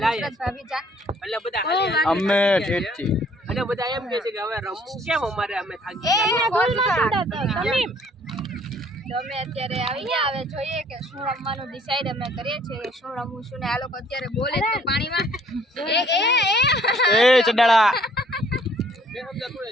નુસરત ભાભીજાન. એટલે બધા અમે ઠેઠથી અને બધા એમ કહે છે કે હવે રમવું કેમ અમારે, અમે થાકી તો અમે અત્યારે આવી ગયા. હવે જોઈએ કે શું રમવાનું ડિસાઈડ અમે કરીએ છીએ, શું રમવું શું ને. આ લોકો અત્યારે બોલે તો પાણીમાં એ ચડાળા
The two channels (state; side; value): normal; both; correlation 0.60